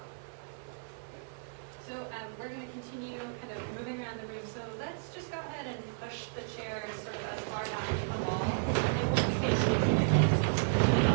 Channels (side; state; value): left; silent; 56 dB below the other